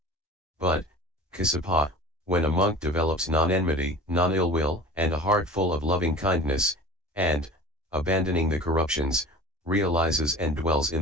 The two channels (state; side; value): normal; both; correlation 0.39